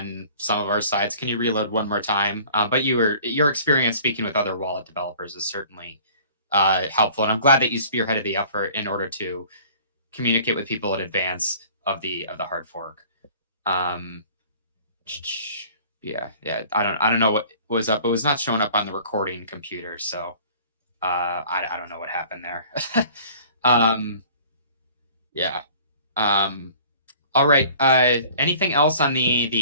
some of our sides. Can you reload one more time? But your experience speaking with other wallet developers is certainly helpful, and I'm glad that you spearheaded the effort in order to communicate with people in advance of the hard fork. Yeah. I don't know what was up. It was not showing up on the recording computer, so I don't know what happened there. Yeah. All right. Anything else on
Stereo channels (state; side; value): inverted; both; correlation -0.50